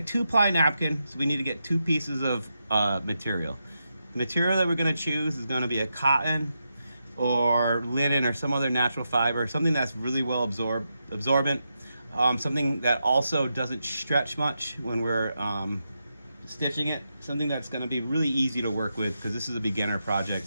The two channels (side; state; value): both; inverted; correlation -0.86